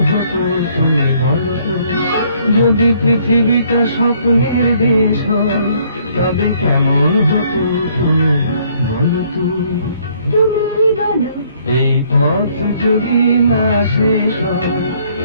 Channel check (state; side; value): inverted; both; correlation -0.64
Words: হতো তুমি বলো তো। যদি পৃথিবীটা স্বপ্নের দেশ হয় তবে কেমন হতো তুমি বলো তো। তুমি বলো এই পথ যদি না শেষ হয়